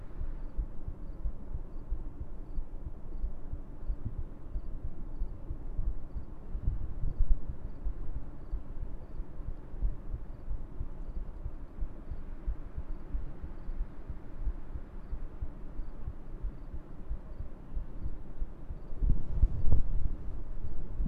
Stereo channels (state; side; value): identical; both; correlation 1.00